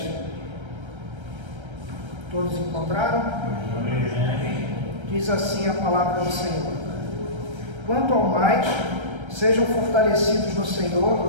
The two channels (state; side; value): late; left; 1.3 ms